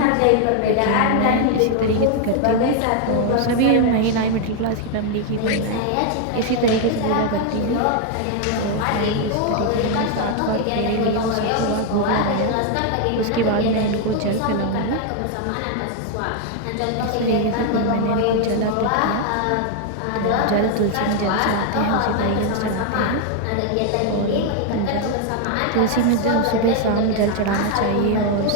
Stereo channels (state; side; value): different; both; correlation 0.00